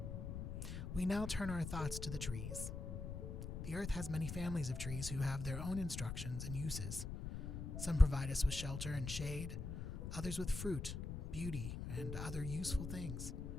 We now turn our thoughts to the trees. The earth has many families of trees who have their own instructions and uses. Some provide us with shelter and shade, others with fruit, beauty, and other useful things.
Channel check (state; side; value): noise; left; rumble, 5 dB below the sound